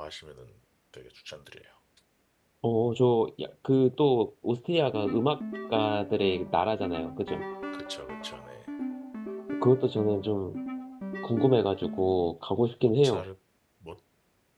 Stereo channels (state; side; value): identical; both; correlation 1.00